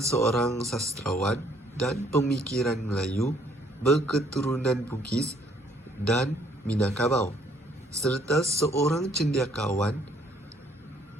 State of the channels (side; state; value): both; normal; correlation 0.64